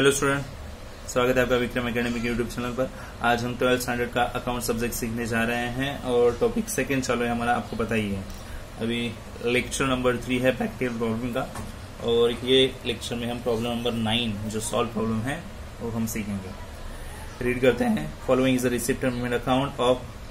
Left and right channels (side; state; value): both; identical; correlation 1.00